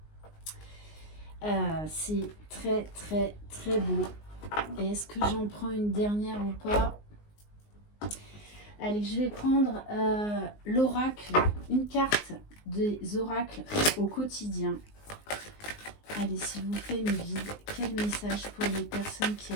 C'est très, très, très beau. Et est-ce que j'en prends une dernière ou pas? Allez, je vais prendre l'oracle, une carte des oracles au quotidien. Allez, s'il vous plaît, mes guides, quel message pour les personnes qui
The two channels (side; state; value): right; late; 19 ms